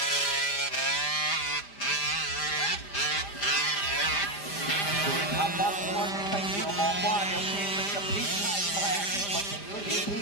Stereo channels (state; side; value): late; right; 5.0 ms